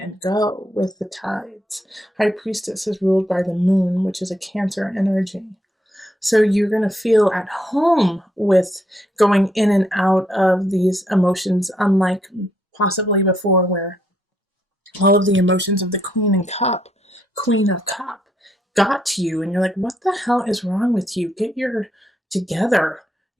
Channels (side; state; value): both; normal; correlation 0.75